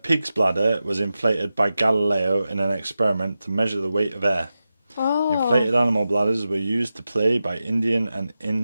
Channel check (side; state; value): both; inverted; correlation -0.92